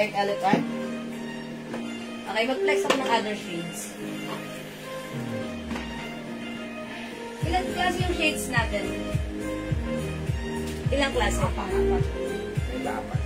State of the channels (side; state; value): both; identical; correlation 1.00